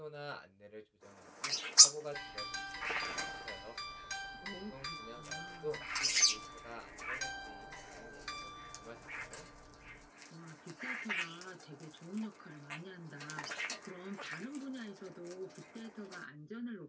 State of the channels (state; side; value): identical; both; correlation 1.00